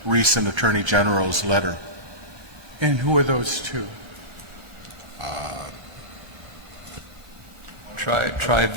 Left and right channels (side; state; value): left; late; 1.2 ms